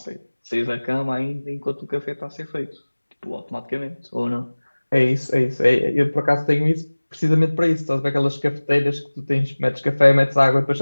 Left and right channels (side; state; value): both; inverted; correlation -1.00